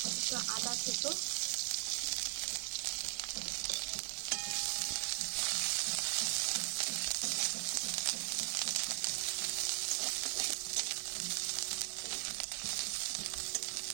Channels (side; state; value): left; silent; 52 dB below the other